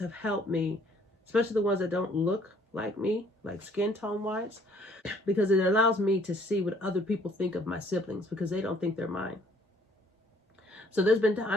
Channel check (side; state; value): both; normal; correlation 0.61